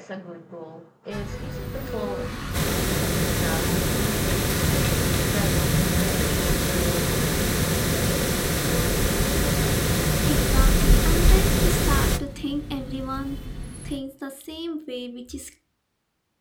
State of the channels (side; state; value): both; identical; correlation 1.00